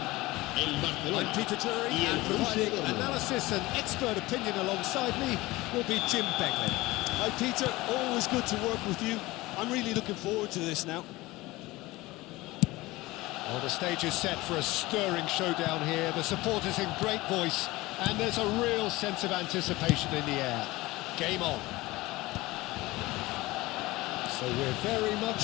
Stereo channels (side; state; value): right; quieter; 19.9 dB